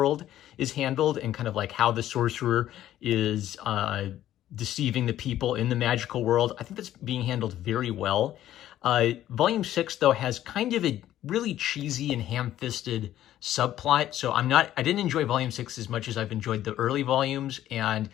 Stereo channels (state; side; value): quieter; right; 12.7 dB